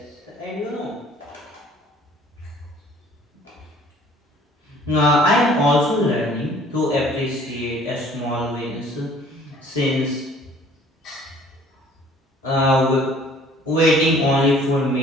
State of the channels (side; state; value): both; normal; correlation 0.54